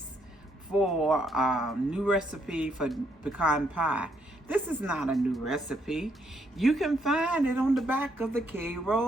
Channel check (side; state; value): both; normal; correlation 0.73